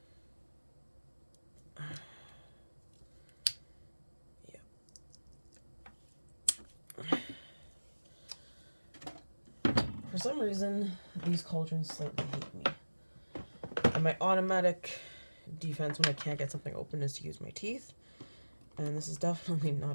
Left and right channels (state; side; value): inverted; both; correlation -1.00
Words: off. Yeah. For some reason, these cauldrons slightly hate me. And my automatic defense when I can't get something open is to use my teeth. And this is definitely